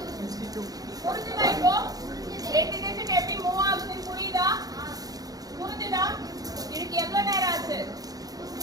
புரிஞ்சுதா? இப்போ ரெண்டு டிஜிட் எப்படி மூவ் ஆகுதுன்னு புரியுதா? புரிஞ்சுதா? இதுக்கு எவ்வளவு நேரம் ஆச்சு?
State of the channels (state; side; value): late; left; 0.18 ms